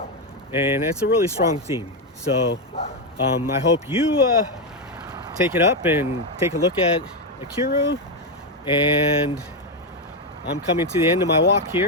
And it's a really strong theme. So I hope you take it up and take a look at Ikiru. And I'm coming to the end of my walk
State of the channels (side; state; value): both; normal; correlation 0.06